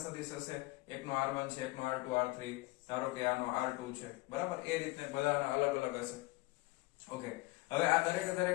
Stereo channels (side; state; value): right; quieter; 22.0 dB